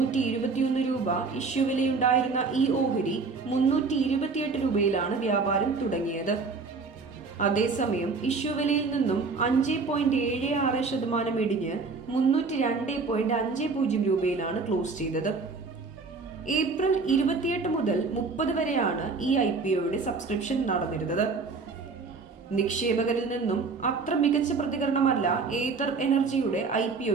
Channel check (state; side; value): quieter; left; 4.4 dB